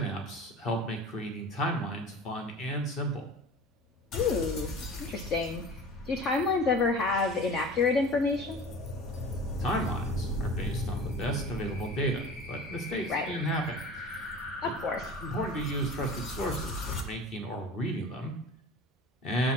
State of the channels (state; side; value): normal; both; correlation 0.38